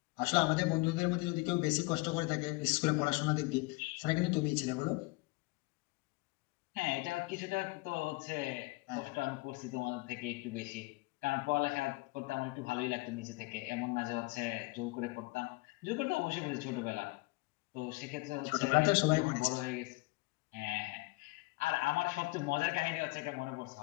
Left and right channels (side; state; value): right; quieter; 24.3 dB